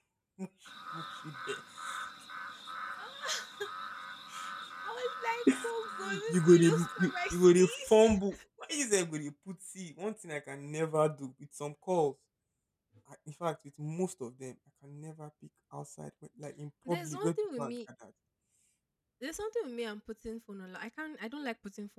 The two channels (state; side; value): identical; both; correlation 1.00